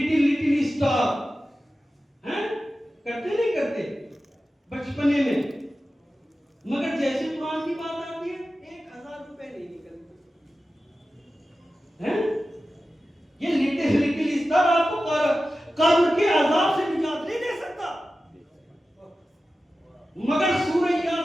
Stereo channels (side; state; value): both; normal; correlation 0.94